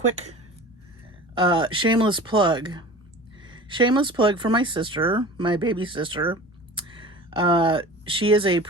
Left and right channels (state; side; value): normal; both; correlation 0.38